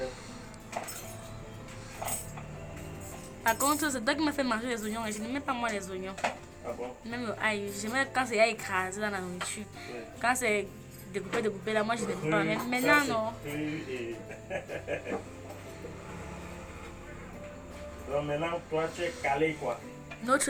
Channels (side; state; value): both; identical; correlation 1.00